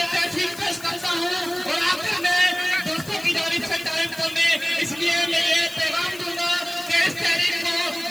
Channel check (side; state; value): left; noise; hiss, 17 dB below the sound